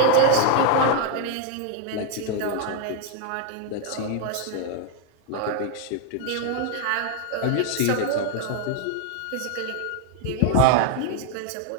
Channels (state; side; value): different; both; correlation 0.01